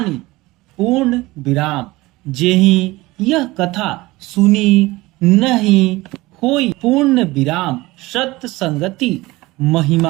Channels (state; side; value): quieter; left; 20.2 dB